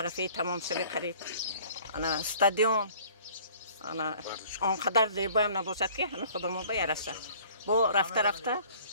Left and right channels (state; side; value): inverted; both; correlation -0.52